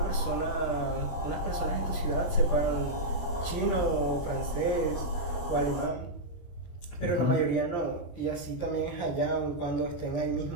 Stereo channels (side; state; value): right; late; 23 ms